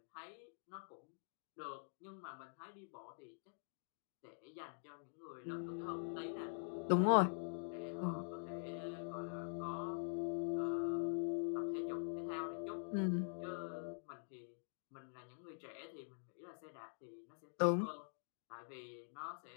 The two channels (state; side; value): silent; right; digital silence